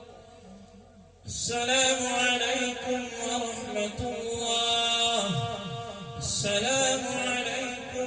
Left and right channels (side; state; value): both; identical; correlation 1.00